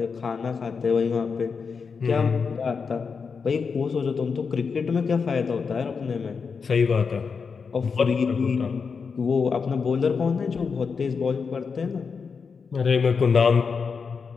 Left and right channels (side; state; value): right; quieter; 5.5 dB